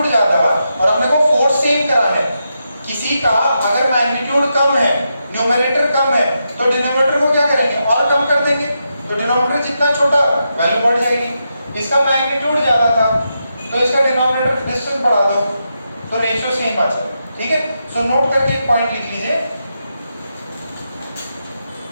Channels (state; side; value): inverted; both; correlation -0.85